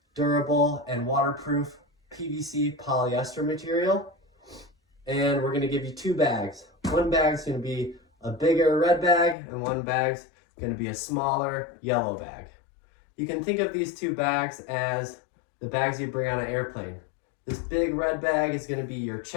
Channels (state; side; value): drops out; right; at 9.3 s